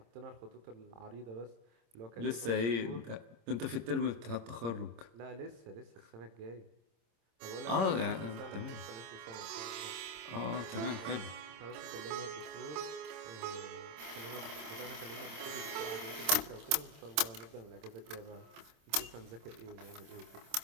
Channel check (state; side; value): late; left; 26 ms